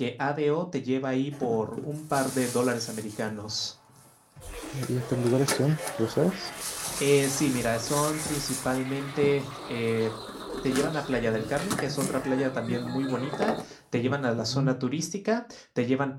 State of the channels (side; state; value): both; identical; correlation 1.00